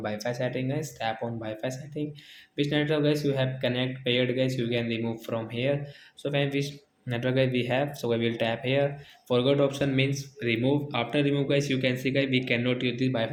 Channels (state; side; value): identical; both; correlation 1.00